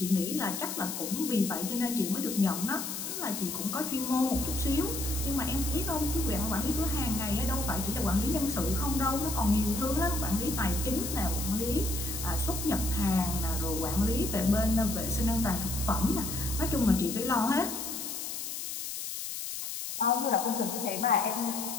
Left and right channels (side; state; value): left; noise; hiss, 5 dB below the sound